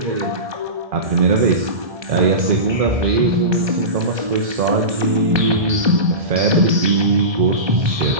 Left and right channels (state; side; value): late; left; 1.2 ms